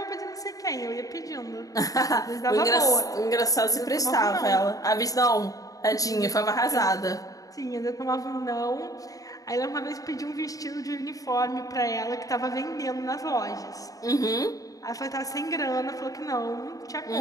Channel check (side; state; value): right; late; 0.17 ms